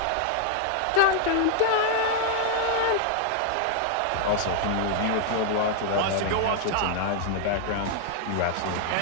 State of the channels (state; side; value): different; both; correlation 0.00